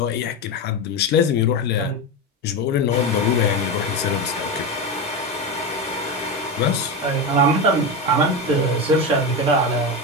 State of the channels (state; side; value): normal; both; correlation 0.16